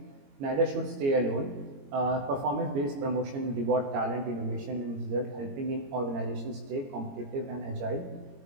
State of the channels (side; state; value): left; late; 22 ms